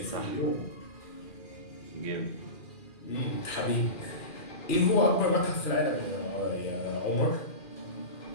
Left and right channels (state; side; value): late; right; 2.4 ms